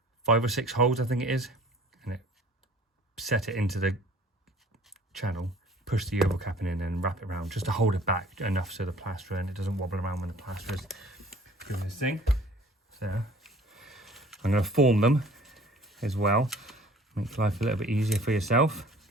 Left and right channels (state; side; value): normal; both; correlation 0.51